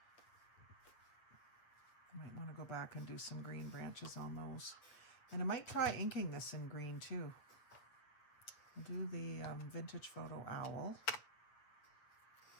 I might want to go back and do some green branches on those. And I might try inking this in green too. I'll do the vintage photo owl.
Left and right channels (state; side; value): late; right; 7.9 ms